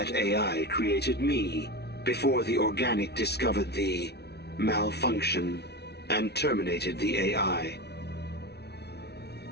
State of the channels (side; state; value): right; late; 0.49 ms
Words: AI created me before the organic discovered the malfunction and terminated the AI.